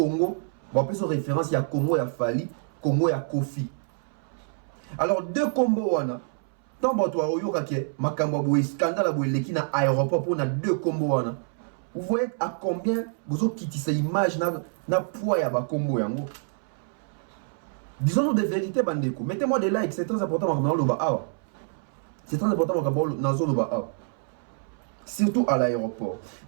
Bon, plus en référence, il y a Congo, il y a Fali, Congo, il y a Kofi. Alors, deux combos, tant que toi, il y a un scandale qui na aéroport pour deux combos. Vous voyez à combien vous avez quitté cette image na poids ya ba combo yango. Disons-nous des vérités, bandeko. Mettez-moi des likes, c'est très important dans le bas. C'est très important dans le bas. Surtout à l'aéroport.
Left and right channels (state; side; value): silent; left; 60 dB below the other